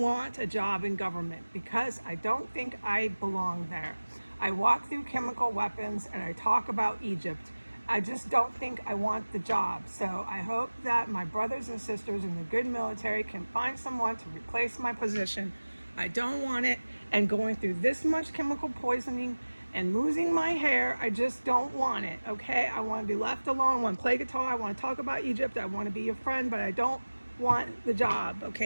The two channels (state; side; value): inverted; both; correlation -1.00